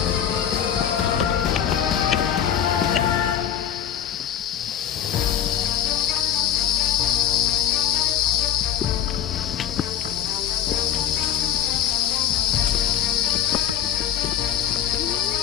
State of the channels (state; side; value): quieter; right; 9.7 dB